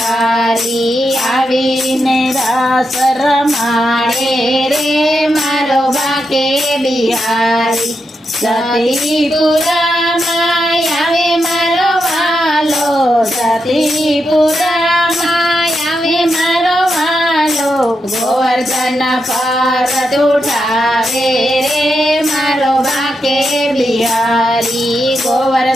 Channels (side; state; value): both; normal; correlation 0.85